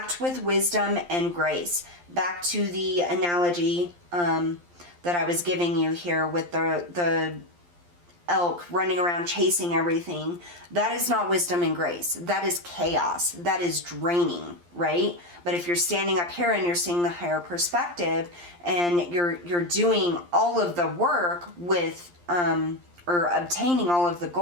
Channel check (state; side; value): late; left; 11 ms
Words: with wisdom and grace. Back to the analogy that I was giving you here with the elk running around chasing everything. That is not wisdom and grace. That is chaos. That is draining, right? But if you're standing up here and you're seeing the higher perspective and you're doing all of the work with or obtaining all of the